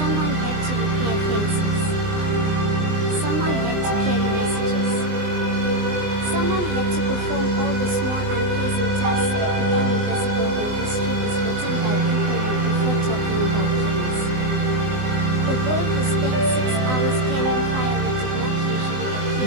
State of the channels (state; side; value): late; left; 20 ms